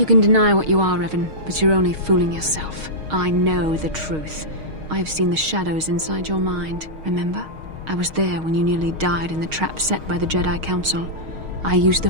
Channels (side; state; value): left; late; 6.4 ms